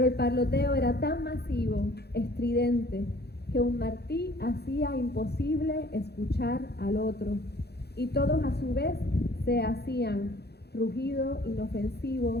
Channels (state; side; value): late; right; 0.48 ms